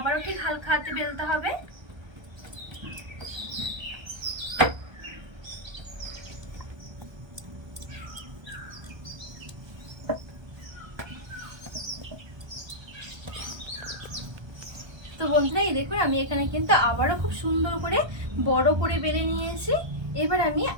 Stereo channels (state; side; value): late; left; 1.3 ms